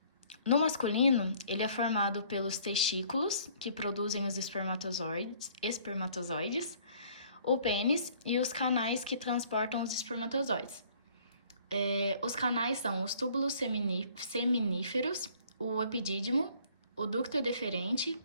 No masculino, ele é formado pelos testículos, que produzem os espermatozoides, o pênis e os canais que transportam os espermatozoides. Os canais são os túbulos seminíferos, o epidídimo, o ducto deferente,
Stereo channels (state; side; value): inverted; both; correlation -0.58